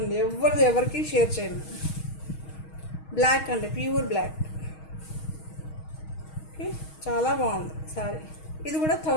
ఎవరికి షేర్ చేయను. బ్లాక్ అండి, ప్యూర్ బ్లాక్. ఓకే, చాలా బాగుంది శారీ. ఇది కూడా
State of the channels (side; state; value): right; late; 6.3 ms